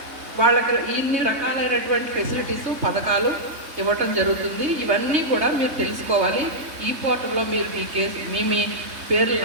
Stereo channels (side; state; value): left; late; 3.7 ms